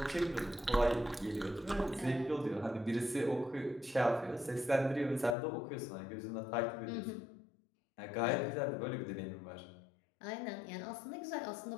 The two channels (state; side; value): drops out; right; at 5.4 s